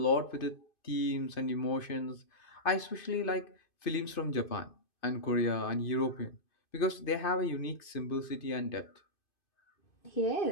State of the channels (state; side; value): late; right; 2.5 ms